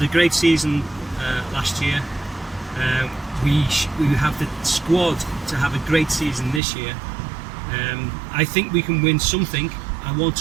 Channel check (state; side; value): drops out; left; at 6.6 s